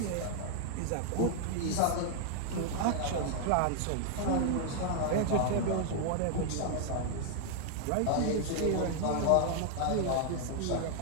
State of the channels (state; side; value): different; both; correlation 0.00